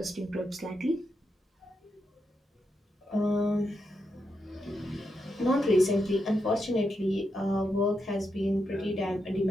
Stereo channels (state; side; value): normal; both; correlation 0.84